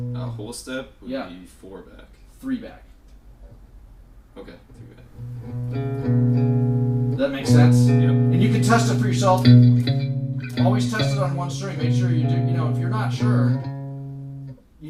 A whole step would be 4 back. 3 back. Okay, 3 back. That makes sense? Yep. And you can test it for yourself. Always test it on one string. Make sure you do. You know, if you're not sure, you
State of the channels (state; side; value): identical; both; correlation 1.00